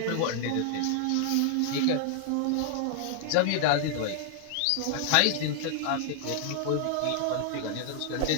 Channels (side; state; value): both; different; correlation 0.00